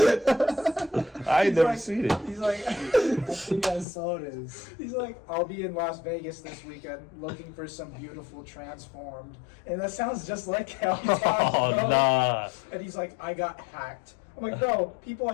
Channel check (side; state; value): right; drops out; at 3.9 s